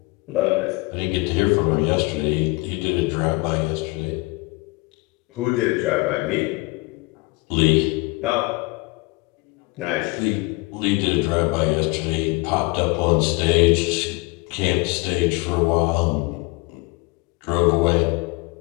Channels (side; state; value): right; quieter; 25.3 dB